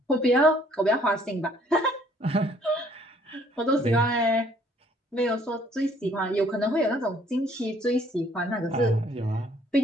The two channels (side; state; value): both; normal; correlation 0.61